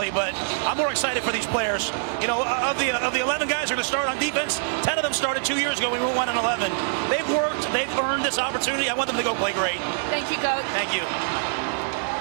but I'm more excited for these players. You know, of the 11 guys who are going to start on defense, 10 of them started 2 years ago. We went 1-11. They've worked. They've earned this opportunity. I want them to go play great. Thank you, Coach. Thank you.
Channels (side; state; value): left; silent; digital silence